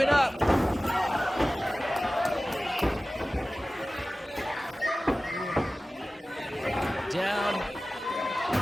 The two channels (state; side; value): normal; both; correlation 0.96